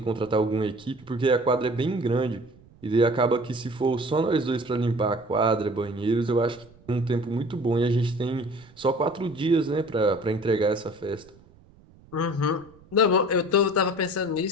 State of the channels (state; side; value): noise; right; rumble, 26 dB below the sound